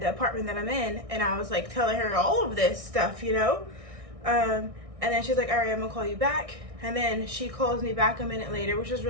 the apartment that I'm in? And I was like telling her all of this stuff, and then she's like, all right, I'm gonna call you back. And then she calls me back a minute later, which was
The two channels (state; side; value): late; left; 1.6 ms